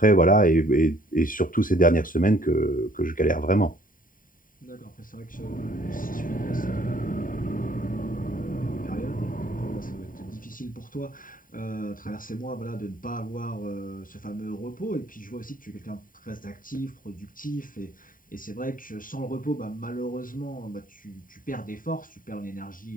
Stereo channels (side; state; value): right; late; 0.40 ms